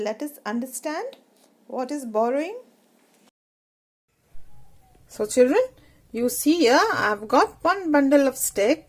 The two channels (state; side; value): identical; both; correlation 1.00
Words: us understand what is borrowing. So children, you see here I have got one bundle of